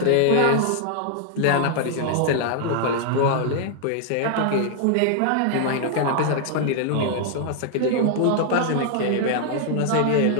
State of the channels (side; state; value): both; different; correlation -0.01